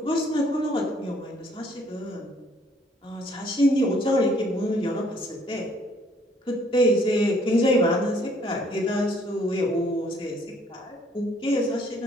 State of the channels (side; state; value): both; normal; correlation 0.63